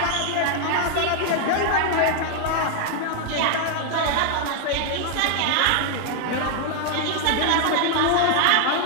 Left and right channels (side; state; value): both; different; correlation 0.00